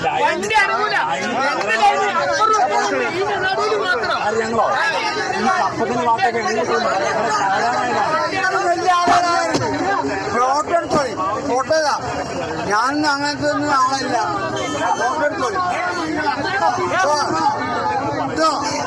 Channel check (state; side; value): identical; both; correlation 1.00